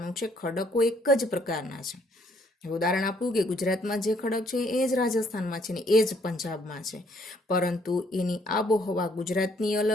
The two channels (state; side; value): normal; both; correlation 0.66